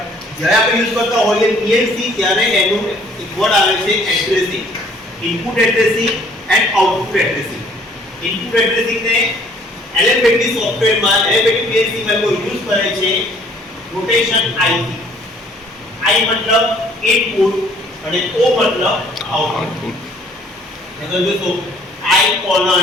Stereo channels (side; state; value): both; normal; correlation 0.58